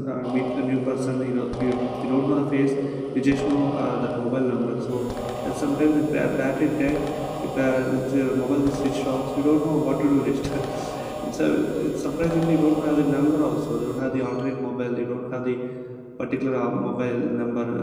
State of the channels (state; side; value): identical; both; correlation 1.00